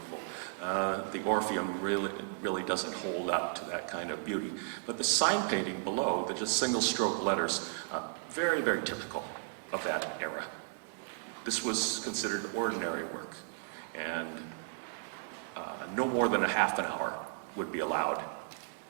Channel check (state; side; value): silent; left; digital silence